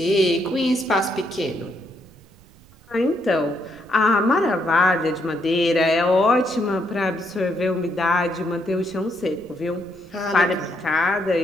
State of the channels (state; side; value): noise; right; rumble, 25 dB below the sound